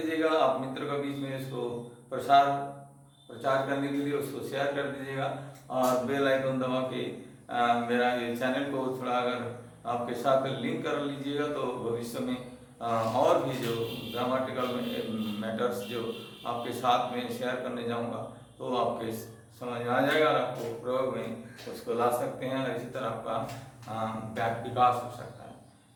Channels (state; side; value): identical; both; correlation 1.00